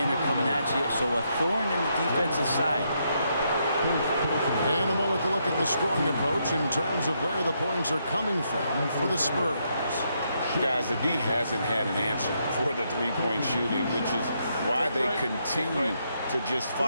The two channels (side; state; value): both; inverted; correlation -0.78